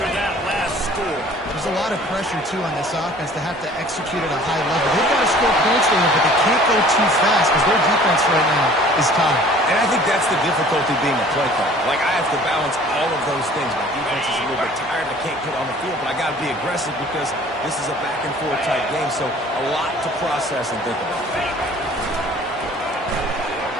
that last score. There's a lot of pressure, too, on this offense to have to execute at a high level. They've got to score points there, but they can't go too fast because their defense right now is tired. And I think that's the difficulty being a play caller. Like, I have to balance all of those things. My defense is a little bit tired. I can't get on the field, but I got to be aggressive because this is a back-and-forth type game, so a lot to process and think about.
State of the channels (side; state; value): both; normal; correlation 0.51